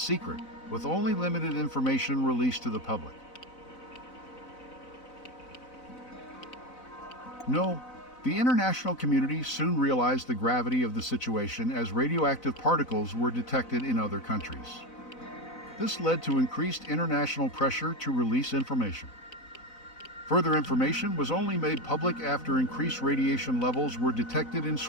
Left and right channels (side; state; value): right; late; 4.0 ms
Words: with only limited information released to the public. No, the international community soon realized the gravity of the situation as radioactive particles were detected in other countries. This led to increased international pressure to release information. Further information was only made public after increased radiation levels were detected in